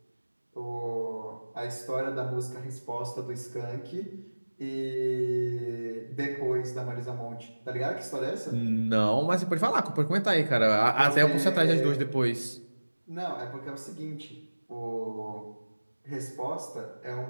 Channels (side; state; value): both; inverted; correlation -1.00